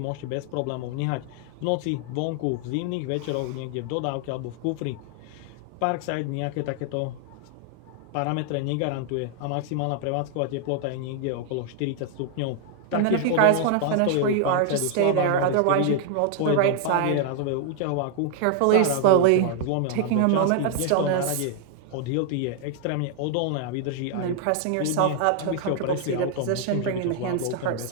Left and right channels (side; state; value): both; different; correlation 0.00